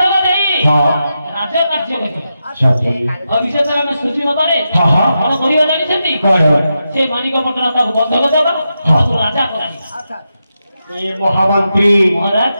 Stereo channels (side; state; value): both; inverted; correlation -0.88